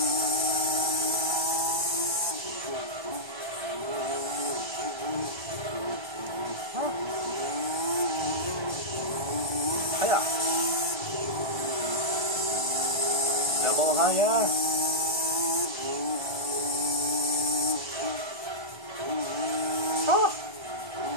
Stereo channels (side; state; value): left; late; 1.3 ms